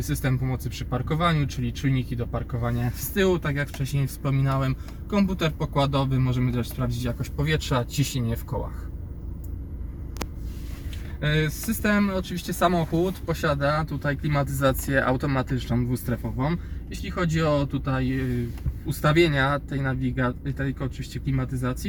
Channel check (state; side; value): identical; both; correlation 1.00